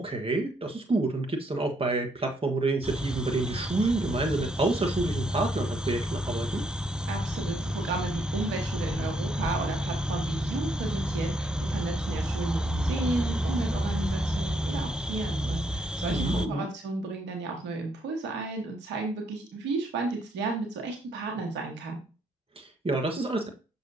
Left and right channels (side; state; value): both; normal; correlation 0.72